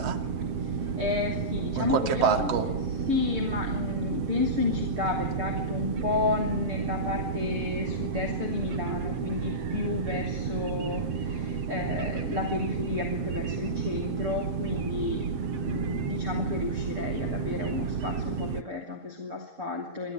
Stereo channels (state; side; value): late; left; 7.6 ms